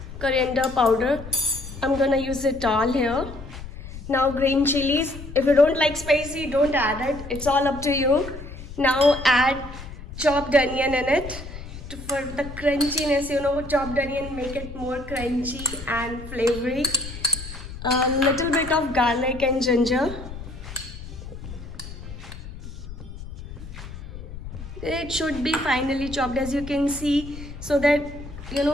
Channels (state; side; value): noise; left; rumble, 12 dB below the sound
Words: coriander powder. I'm gonna use it all here. Now green chilies. If you don't like spicy, don't add it. It's all up to you. Now add chopped onion in it for the crunchiness. Chopped onion make it more crunchy and flavory. A little bit of garlic and ginger. It should be finely chopped, as you can see, so that